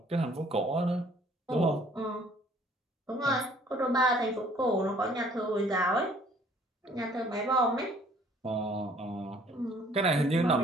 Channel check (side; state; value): both; normal; correlation 0.58